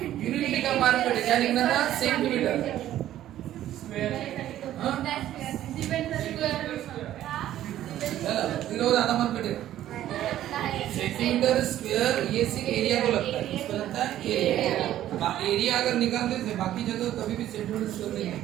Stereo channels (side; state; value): left; quieter; 12.7 dB